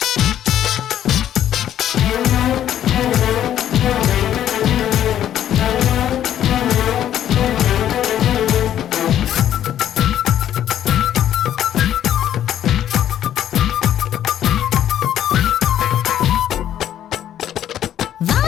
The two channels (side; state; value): right; quieter; 11.0 dB